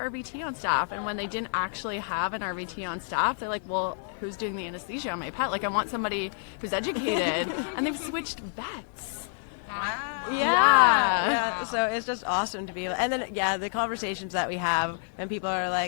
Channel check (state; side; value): silent; right; 59 dB below the other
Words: RVT on staff? And when they didn't actually have an RVT on staff, they're like, well, who's doing the anesthesia on my pet? Like, I want somebody who's educated. And they've switched vets. Yeah. So it's just awesome to be able, and then the conversations that we have when people are